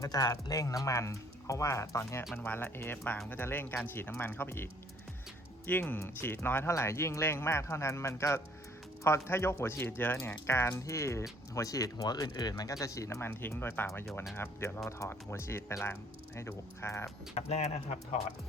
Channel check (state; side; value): normal; both; correlation 0.60